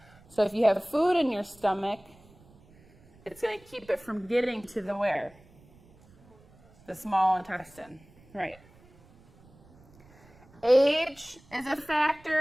So if you have food in your stomach, it's going to keep it from getting to the where? The small intestine. Right. Age is a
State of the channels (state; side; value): noise; right; rumble, 27 dB below the sound